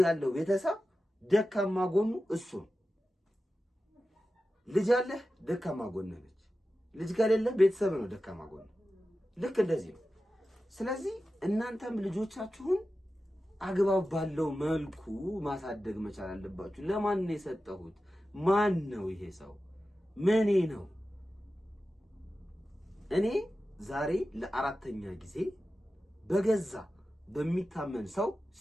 ያለው ቤተሰብ ደካማ ጎኑ እሱ ነው። ልጅ ያለህ ደካማ ጎንህ ነች። ልጅ ከሌለ ቤተሰብ ነው ደካማ ጎን። ልክ እንደዚህ ነው። ስለዚህ እናንተም ልጆቻችሁን አግባብ ባለው መልኩ ማሳደግ መቻል አለባችሁ። ለማን ነው የሰጠሁት? ማን ነው ይሄ ሰው? ምኔ ነው? እኔ ዛሬ ለአራተኛ ጊዜ በገዛ በሚታመን ሰው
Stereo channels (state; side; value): normal; both; correlation 0.93